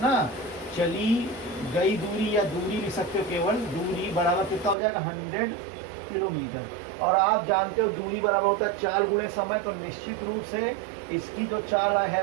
ना। चली गई दूरी या दूरी लिख सकते हो, केवल दूरी बराबर कितना हो जाएगा, 100 किलोमीटर। और आप जानते हो दूरी बराबर होता है चाल गुणे समय, तो निश्चित रूप से इसकी जो चाल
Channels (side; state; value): left; drops out; at 4.8 s